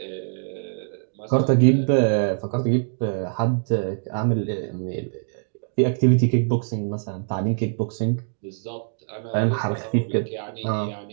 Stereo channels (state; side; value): silent; left; digital silence